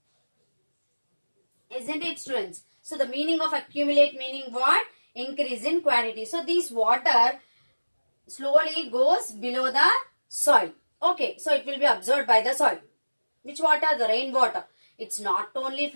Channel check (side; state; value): both; inverted; correlation -1.00